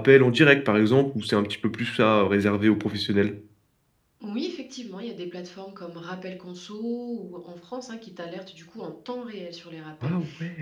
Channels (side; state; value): both; identical; correlation 1.00